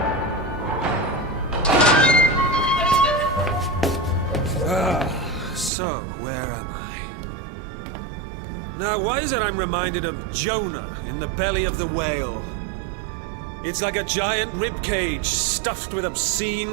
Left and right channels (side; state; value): left; drops out; at 5.7 s